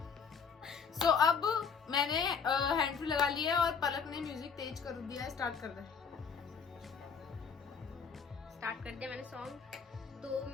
So अब मैंने हैंड फ्री लगा लिया है और पलक ने म्यूजिक तेज कर दिया है. स्टार्ट कर दे. स्टार्ट कर दिया मैंने सॉन्ग. तो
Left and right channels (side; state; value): right; quieter; 6.1 dB